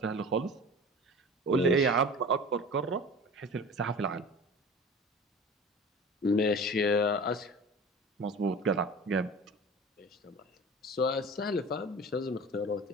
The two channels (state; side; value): normal; both; correlation 0.38